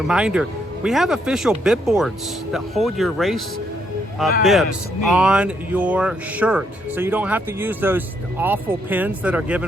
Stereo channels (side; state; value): both; normal; correlation 0.74